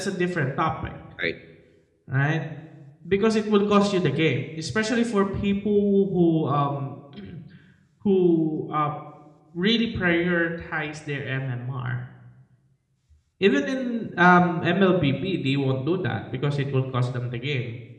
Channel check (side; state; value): both; identical; correlation 1.00